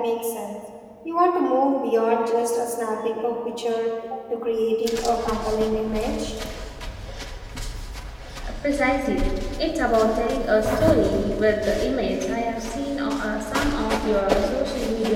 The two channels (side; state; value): both; identical; correlation 1.00